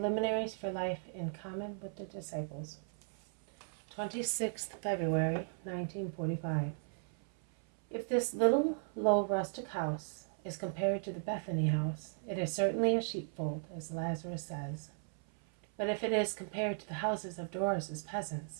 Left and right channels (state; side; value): silent; left; 53 dB below the other